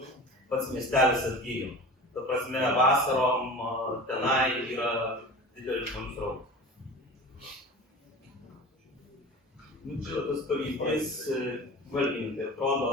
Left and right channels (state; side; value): normal; both; correlation 0.36